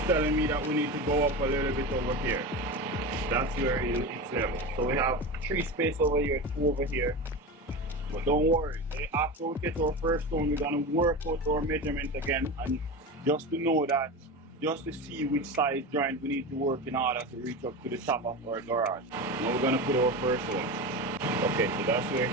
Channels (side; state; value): both; normal; correlation 0.24